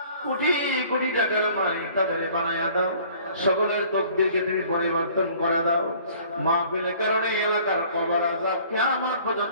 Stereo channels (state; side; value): inverted; both; correlation -0.54